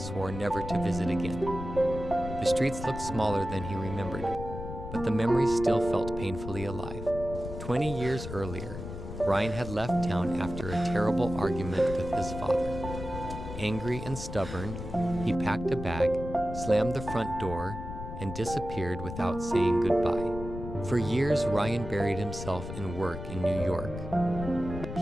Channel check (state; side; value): noise; left; rumble, 9 dB below the sound